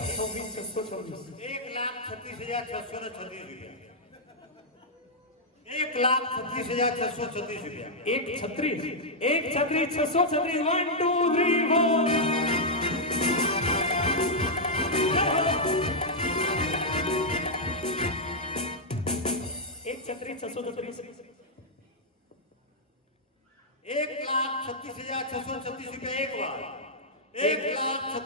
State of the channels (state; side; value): normal; both; correlation -0.06